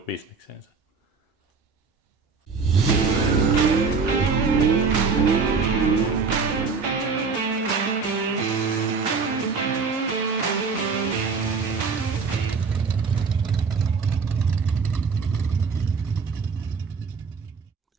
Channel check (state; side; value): quieter; left; 4.9 dB